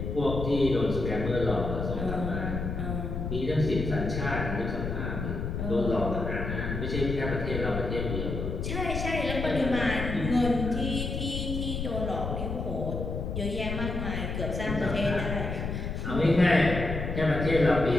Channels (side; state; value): left; noise; rumble, 3 dB below the sound